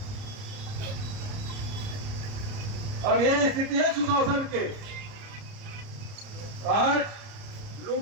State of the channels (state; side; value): late; left; 30 ms